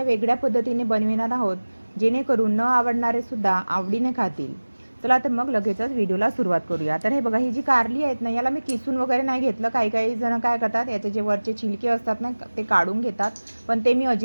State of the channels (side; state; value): both; inverted; correlation -1.00